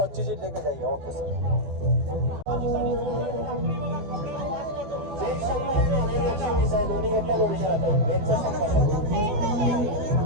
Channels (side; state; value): left; late; 14 ms